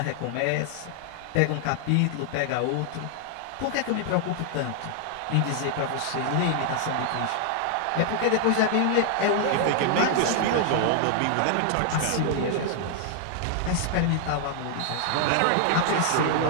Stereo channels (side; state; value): both; different; correlation 0.00